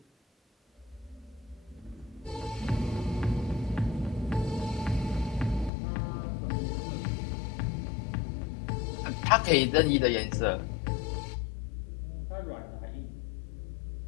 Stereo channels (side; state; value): right; drops out; at 5.7 s